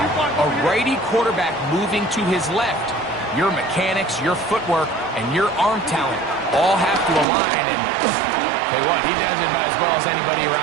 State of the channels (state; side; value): drops out; left; at 7.2 s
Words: A righty quarterback moving to his left. Your mechanics, your footwork, and your arm talent all have to align, and tell you what, he does it about as well as anybody